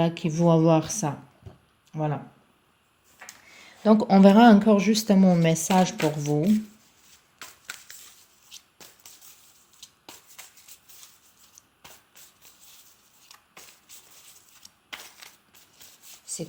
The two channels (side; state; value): both; identical; correlation 1.00